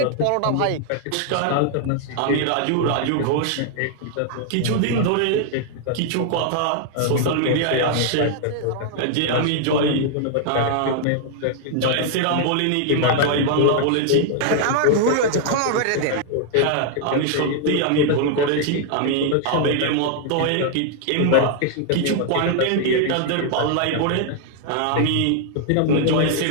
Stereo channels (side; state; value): both; different; correlation 0.00